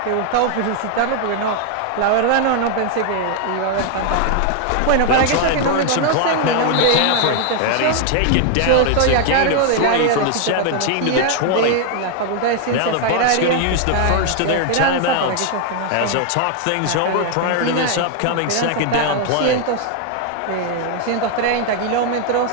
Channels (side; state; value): both; different; correlation 0.00